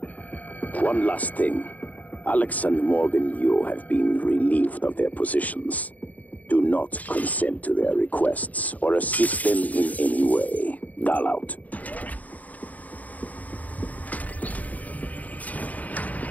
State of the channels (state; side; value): late; right; 0.076 ms